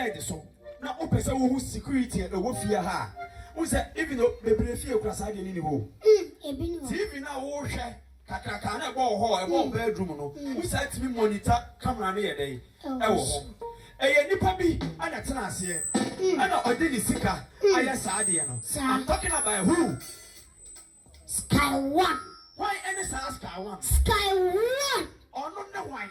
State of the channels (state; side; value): identical; both; correlation 1.00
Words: so. Now o person who security e wo fear ha. Who say even though bebre fear kwasa de ni ho. Ebi no. TV na wo hwe kakaka na go ho e wo bedroom no. Who say to me monitor camera na ye dey. E wo ho. Eye nipa bi ana tena ase. Ana odini sika aya saade no. I'm talking about who? Sky One. Why any Sky One? Sky One. Oh no why?